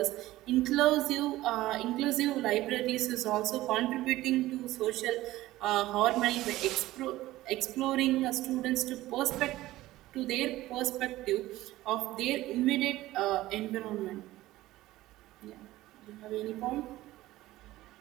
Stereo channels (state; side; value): quieter; left; 16.5 dB